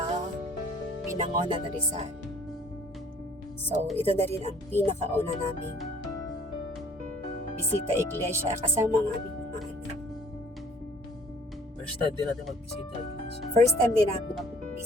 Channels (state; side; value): normal; both; correlation 0.55